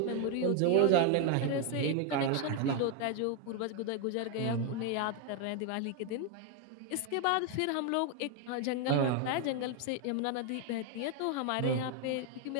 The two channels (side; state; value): both; different; correlation 0.01